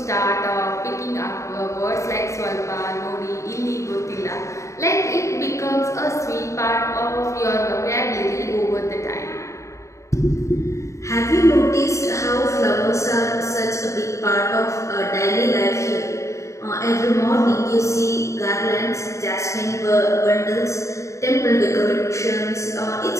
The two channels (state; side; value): late; right; 0.14 ms